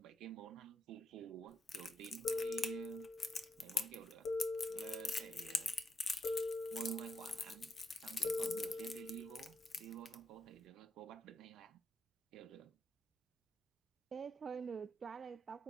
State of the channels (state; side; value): normal; both; correlation 0.83